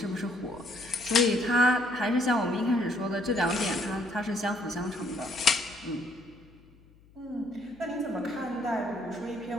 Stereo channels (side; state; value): left; noise; hum, 27 dB below the sound